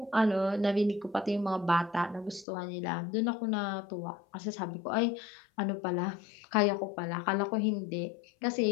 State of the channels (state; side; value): drops out; right; at 2.5 s